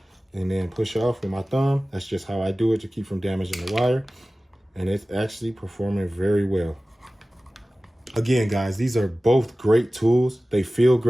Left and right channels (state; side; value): normal; both; correlation 0.97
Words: and then push off with my thumb. That's just how I do it to keep from damaging the wire, and it's actually performing very well. Again, guys, these are both great tools. They feel